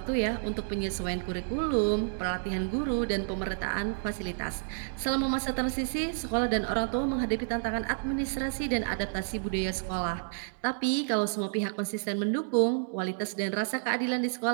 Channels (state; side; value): silent; left; digital silence